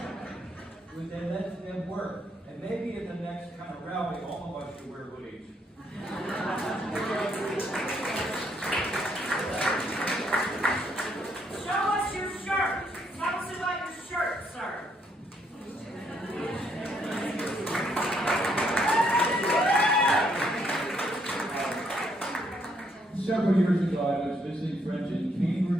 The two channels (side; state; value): both; normal; correlation 0.72